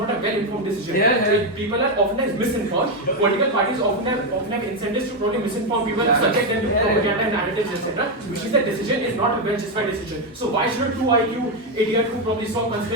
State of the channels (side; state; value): both; normal; correlation 0.06